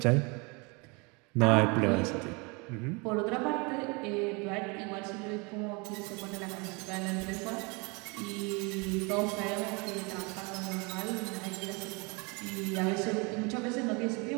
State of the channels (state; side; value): quieter; left; 29.3 dB